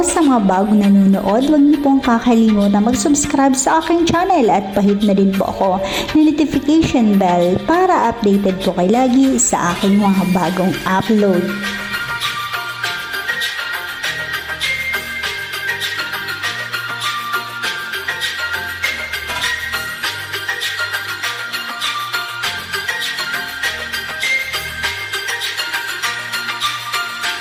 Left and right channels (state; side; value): identical; both; correlation 1.00